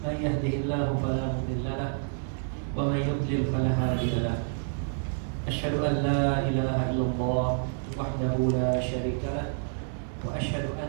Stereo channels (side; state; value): left; silent; digital silence